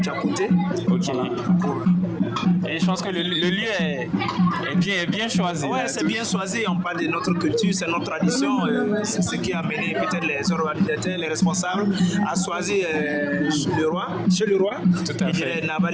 à côté. Ok. Et je pense que le lieu est bien choisi. Ouais, c'est bien choisi. On parle de notre culture, c'est notre tradition. C'est ce qui a amené peut-être les organisateurs, les responsables à choisir chez le roi. Tout à fait. Et Naba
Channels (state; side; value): identical; both; correlation 1.00